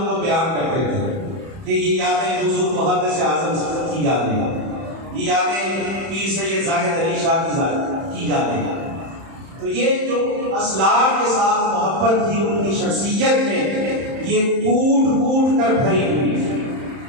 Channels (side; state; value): left; late; 31 ms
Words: کو بیان کرتے تھے کہ یہ یادیں حضور محدث اعظم کی یادیں، یہ یادیں پیر سید زاہد علی شاہ کی یادیں۔ تو یہ جو اسلاف کے ساتھ محبت تھی ان کی شخصیت میں، یہ کوٹ کوٹ کر بھری ہوئی ہے۔